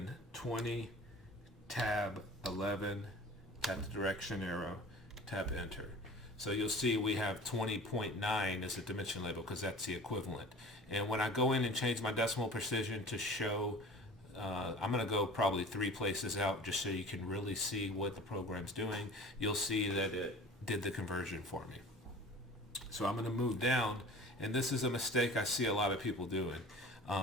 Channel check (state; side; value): normal; both; correlation 0.42